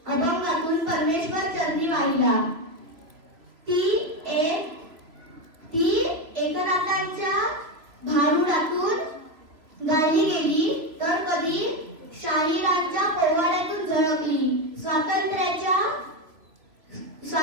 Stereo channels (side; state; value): left; late; 3.0 ms